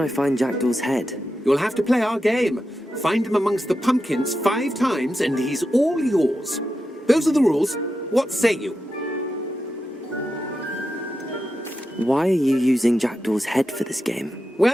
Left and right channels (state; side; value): normal; both; correlation 0.89